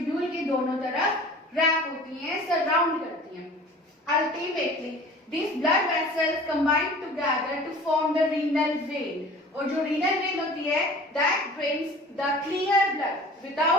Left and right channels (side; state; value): both; normal; correlation 0.43